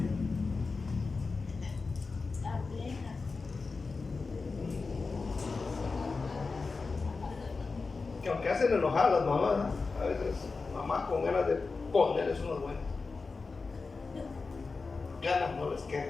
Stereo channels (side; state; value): right; quieter; 4.2 dB